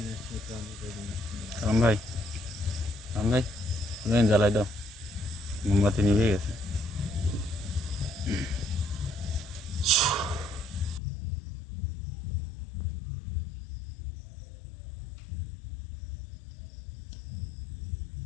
সালাম ভাই, সালাম ভাই, তুমি জ্বালাই দাও, মোমবাতি নিভে গেছে।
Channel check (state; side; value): drops out; right; at 11.0 s